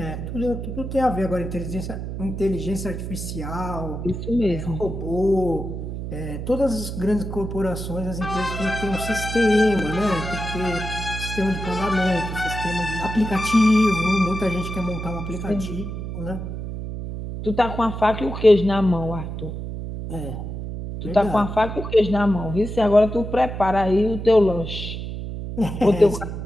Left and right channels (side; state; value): right; noise; hum, 6 dB below the sound